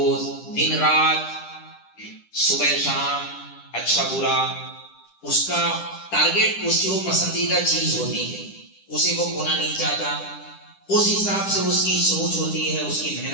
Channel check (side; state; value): right; late; 10 ms